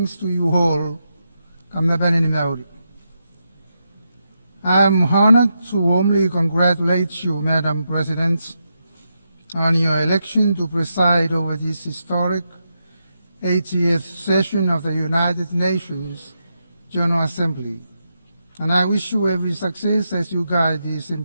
to you all. I am honored to warmly congratulate you, Madam President, on your election to preside over this historic 80th session of the United Nations General Assembly, and I wish you every success as you guide these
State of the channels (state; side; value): inverted; both; correlation -0.85